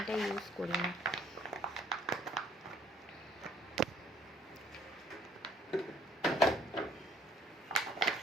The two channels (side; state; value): both; normal; correlation 0.60